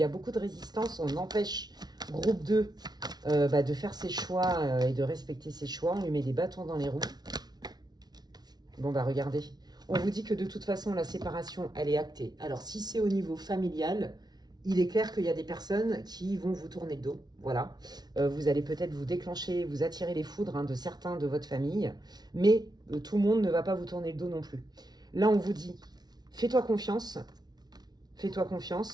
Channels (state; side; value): late; left; 0.19 ms